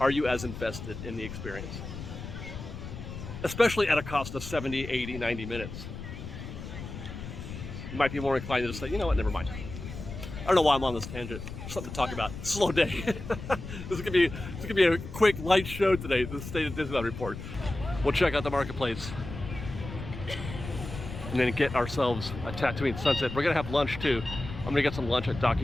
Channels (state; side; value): noise; left; rumble, 9 dB below the sound